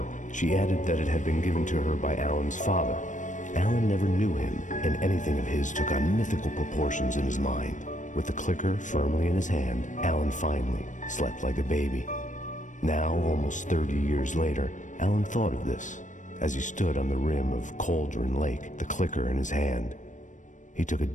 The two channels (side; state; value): right; late; 0.37 ms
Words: she added that it had been given to her by Alan's father. Alan never knew him, and anything of his took on mythical proportions in his mind. With the clicker firmly in his hand, Alan finally slept like a baby. Now, almost 30 years later, Alan thought of this as he stood on the rim of Cauldron Lake, the clicker in his hand. He took a